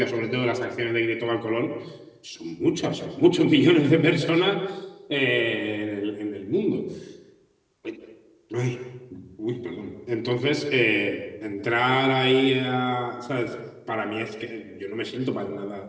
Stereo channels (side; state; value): both; identical; correlation 1.00